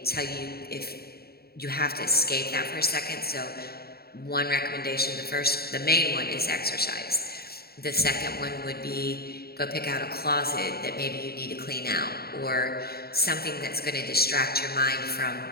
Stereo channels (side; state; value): right; late; 0.45 ms